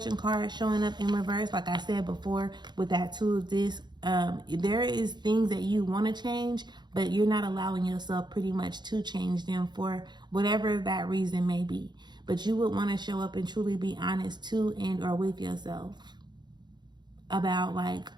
card showing up in reverse, like I said before, with that Two of Discs, there is things that you want to change, but you're not allowing yourself pretty much to change them for whatever that reason may be. But you would want to show up and truly be honest to and or with yourself about like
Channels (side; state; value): left; late; 0.21 ms